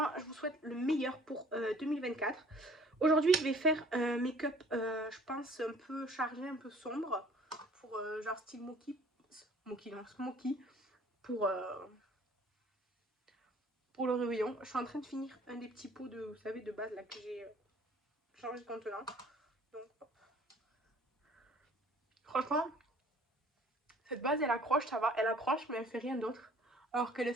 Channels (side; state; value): both; normal; correlation 0.53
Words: je vous souhaite le meilleur pour 2024. Aujourd'hui, je vais faire un make-up, je pense, un peu chargé, un peu sombre, pour genre style smoky, pour le réveillon. Je suis en train de finir un des petits pots de, vous savez, de base là que j'ai changé de contenant. Donc, hop. Franchement, cette base, elle accroche, ça va, elle accroche, mais elle fait rien d'autre. Alors qu'elle est